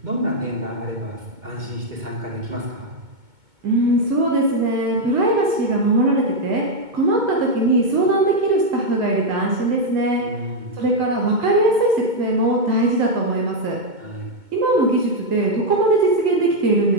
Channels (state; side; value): late; left; 2.2 ms